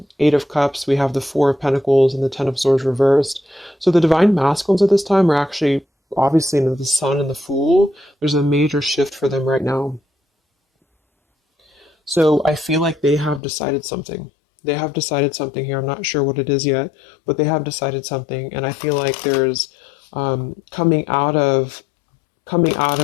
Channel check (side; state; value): right; drops out; at 13.4 s